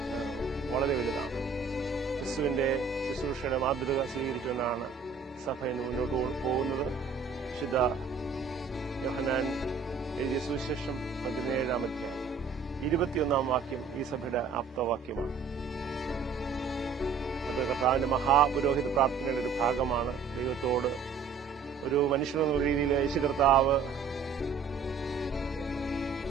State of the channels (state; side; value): quieter; left; 5.4 dB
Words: വളരെ വലുതാണ്. ക്രിസ്തുവിന്റെ ശുശ്രൂഷയുടെ മാതൃക സ്വീകരിച്ചുകൊണ്ടാണ് സഭ ഇന്ന് മുന്നോട്ട് പോകുന്നത്. വിശുദ്ധ യോഹന്നാൻ എഴുതിയ സുവിശേഷം 17-ാം അധ്യായം 21-ാം വാക്യം ഈ സഭയുടെ ആപ്തവാക്യമാണ്. അത് കർത്താവിന്റെ മഹാപുരോഹിത പ്രാർത്ഥനയുടെ ഒരു ഭാഗമാണ്. ദൈവത്തോട് ഒരു മനുഷ്യനെന്ന രീതിയിൽ യേശു കർത്താവ്